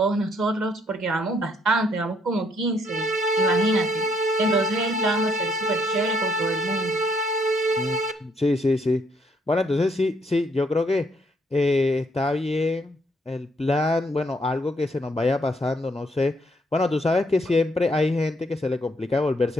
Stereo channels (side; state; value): both; normal; correlation 0.70